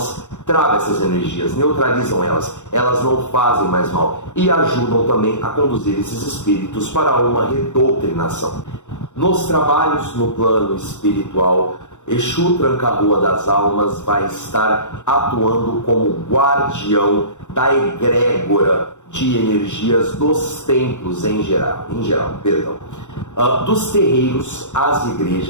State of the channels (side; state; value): right; late; 0.84 ms